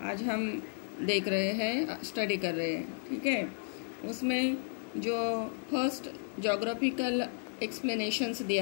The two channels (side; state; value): right; silent; 56 dB below the other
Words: आज हम देख रहे हैं, स्टडी कर रहे हैं। ठीक है, उसमें जो फर्स्ट जोग्राफिकल एक्सप्लेनेशंस